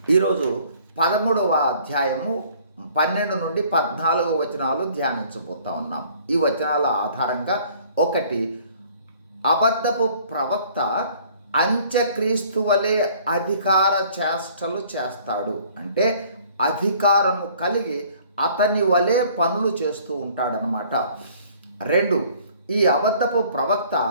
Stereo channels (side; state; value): both; inverted; correlation -0.56